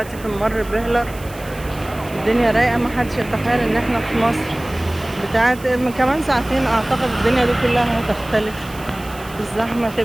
في ممر بهلر، الدنيا رايقة، محدش يتخيل ان احنا في مصر بتاعت من كمان ساعتين. اعتقد الدنيا دي كلها هتختلف، الزحمة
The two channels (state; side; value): noise; right; hiss, 19 dB below the sound